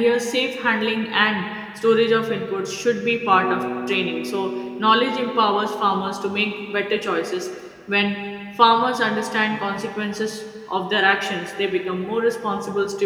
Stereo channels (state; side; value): identical; both; correlation 1.00